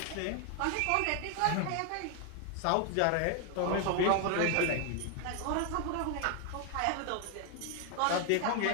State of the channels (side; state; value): both; different; correlation 0.01